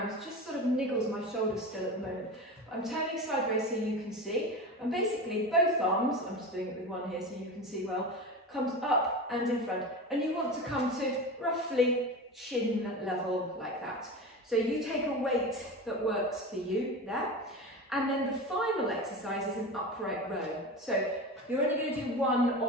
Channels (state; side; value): normal; both; correlation 0.27